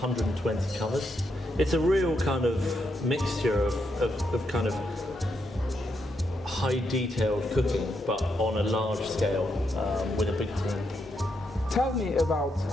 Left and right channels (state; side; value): normal; both; correlation 0.80